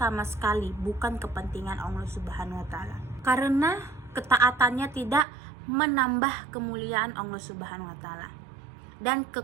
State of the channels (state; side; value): drops out; left; at 5.2 s